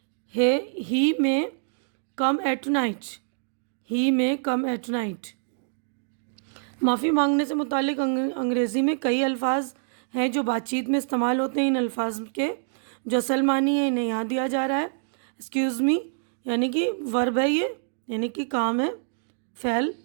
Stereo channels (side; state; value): left; silent; digital silence